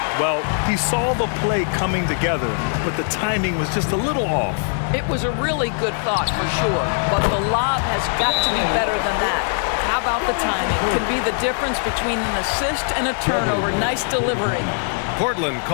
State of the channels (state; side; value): silent; right; 65 dB below the other